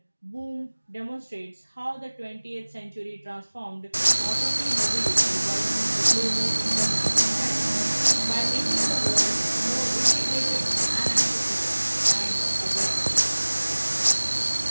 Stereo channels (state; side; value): inverted; both; correlation -1.00